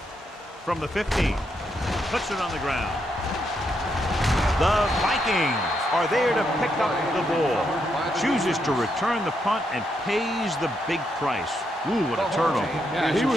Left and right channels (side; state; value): both; normal; correlation 0.79